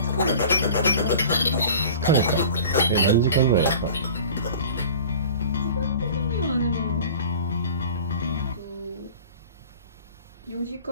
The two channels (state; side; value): inverted; both; correlation -0.42